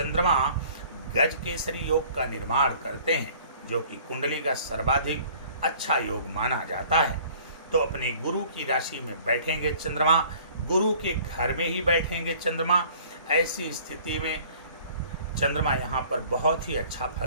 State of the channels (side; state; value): both; inverted; correlation -0.52